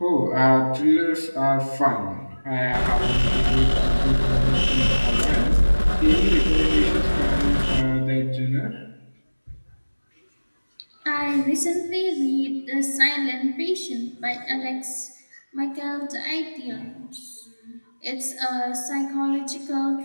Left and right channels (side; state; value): both; inverted; correlation -1.00